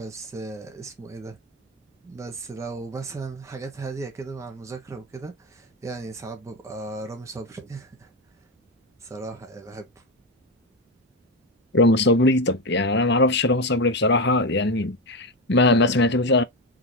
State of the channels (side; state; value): both; normal; correlation 0.13